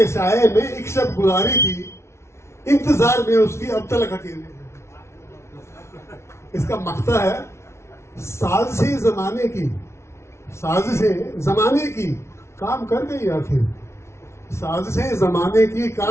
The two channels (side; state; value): right; late; 0.13 ms